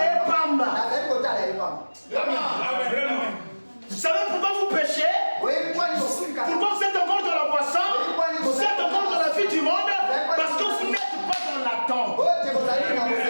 Vous savez pourquoi vous péchez? Pourquoi vous êtes encore dans la boisson? Vous êtes encore dans la vie du monde? Parce que vous n'êtes pas dans l'attente.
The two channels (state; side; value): inverted; both; correlation -1.00